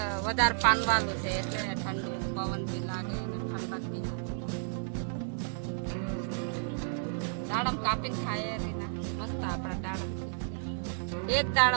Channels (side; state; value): left; silent; digital silence